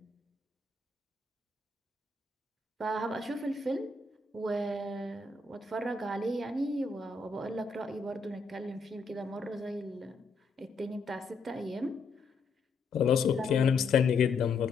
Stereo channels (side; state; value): right; quieter; 4.1 dB